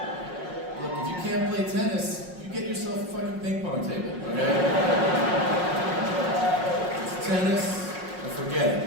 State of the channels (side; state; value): left; late; 5.5 ms